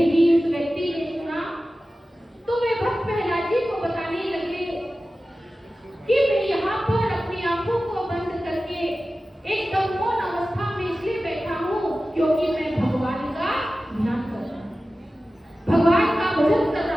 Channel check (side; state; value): both; normal; correlation 0.95